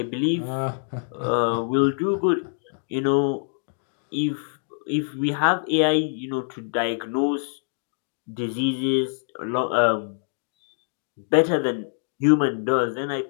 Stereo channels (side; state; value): right; silent; digital silence